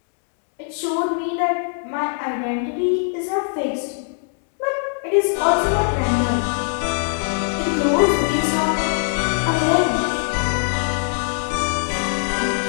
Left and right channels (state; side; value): silent; right; 63 dB below the other